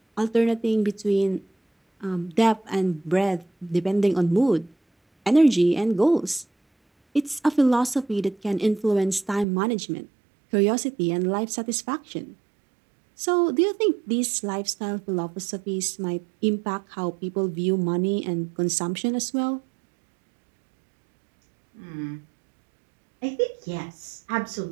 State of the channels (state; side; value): drops out; left; at 9.5 s